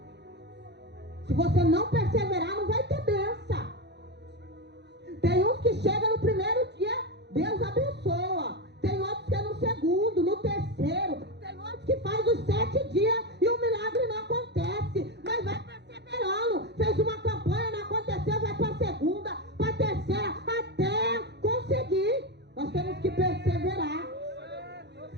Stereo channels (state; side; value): late; left; 0.50 ms